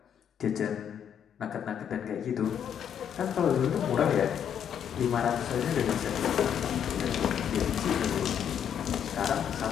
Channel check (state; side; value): quieter; right; 8.7 dB